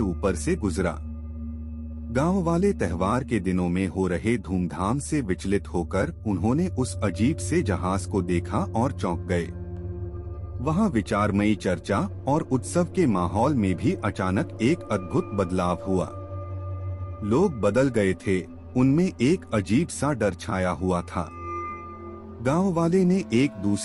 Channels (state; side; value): identical; both; correlation 1.00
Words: ऊपर से गुजरा। गांव वाले त्योहार के दिनों में हो रहे धूमधाम से विचलित होकर उन्होंने उस अजीब से जहाज को देखा और चौंक गए। वहां विचारमयी चर्चा और उत्सव के माहौल में भी अचानक एक अद्भुत बदलाव हुआ। लोग बदल गए थे, उनमें एक अजीब सा डर छाया हुआ था। गांव वाले ने एक